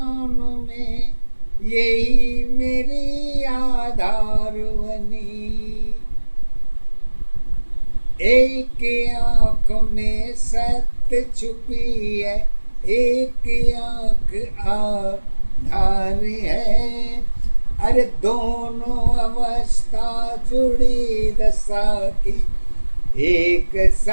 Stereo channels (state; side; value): inverted; both; correlation -1.00